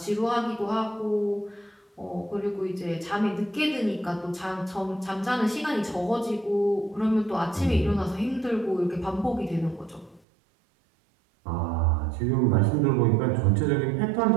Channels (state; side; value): drops out; left; at 10.2 s